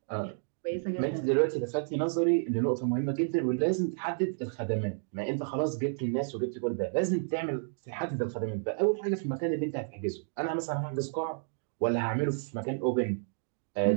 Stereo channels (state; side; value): silent; left; digital silence